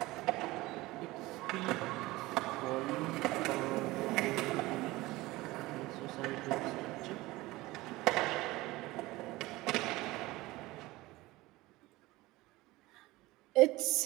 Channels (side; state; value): left; quieter; 19.5 dB